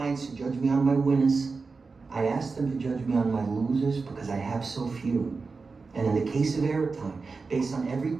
to judge me on my winners. I ask them to judge me on my losers because I have so few. And in the case of Aerotime, based on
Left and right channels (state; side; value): quieter; left; 4.4 dB